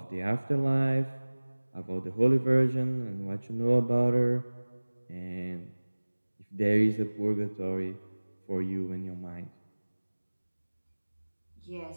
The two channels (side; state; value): both; inverted; correlation -1.00